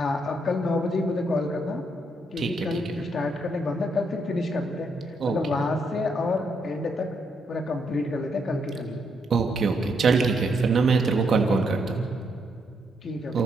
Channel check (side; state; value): both; normal; correlation 0.76